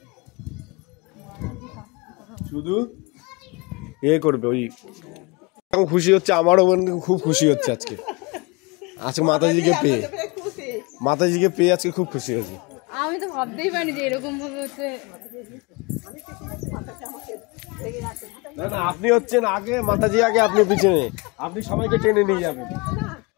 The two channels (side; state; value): right; quieter; 27.5 dB